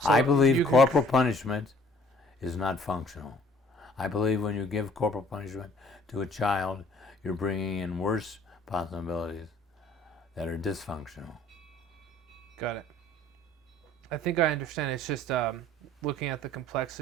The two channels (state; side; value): normal; both; correlation 0.56